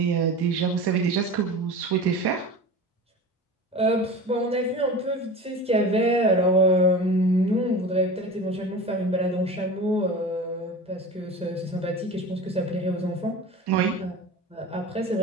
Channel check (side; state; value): both; normal; correlation 0.33